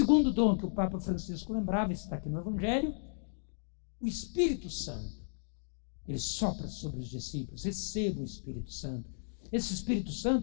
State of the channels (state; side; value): silent; right; digital silence